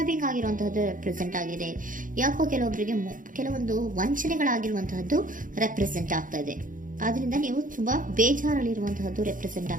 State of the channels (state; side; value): late; left; 0.39 ms